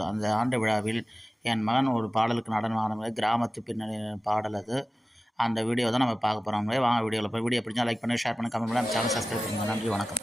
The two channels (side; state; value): both; normal; correlation 0.96